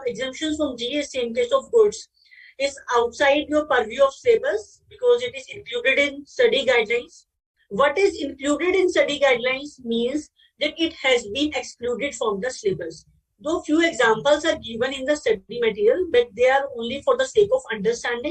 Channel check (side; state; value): both; identical; correlation 1.00